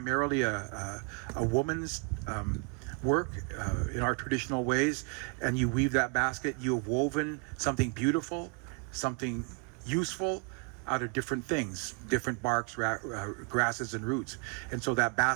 a woman's work in our traditional ways, and you weave that basket, you have woven something beautiful, something useful out of different things, different barks, grasses, and roots. And so that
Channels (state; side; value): quieter; left; 35.4 dB